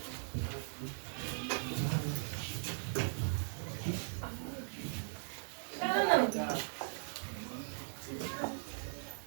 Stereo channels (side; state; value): left; silent; digital silence